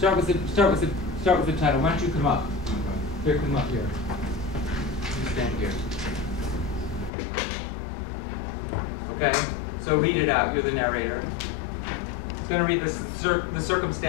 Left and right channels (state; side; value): drops out; right; at 7.1 s